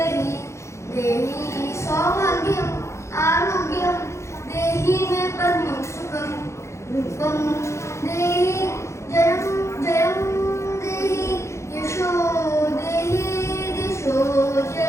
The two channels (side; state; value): right; late; 0.14 ms